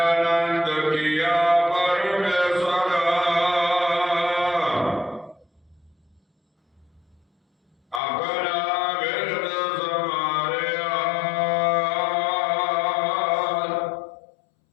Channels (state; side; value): drops out; right; at 8.0 s